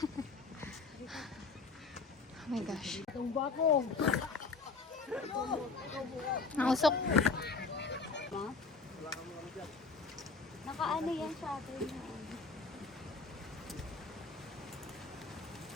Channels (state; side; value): quieter; right; 4.4 dB